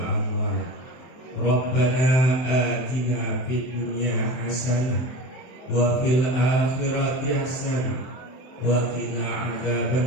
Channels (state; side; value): late; right; 24 ms